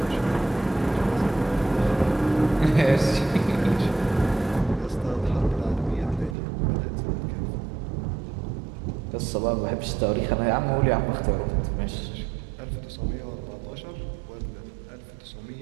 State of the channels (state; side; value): drops out; left; at 6.4 s